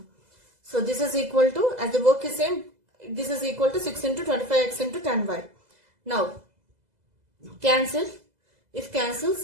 So this is equal to, as the work is same, this is equal to 6 into 25x into 10y. Now, cancel. If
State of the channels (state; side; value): late; left; 2.0 ms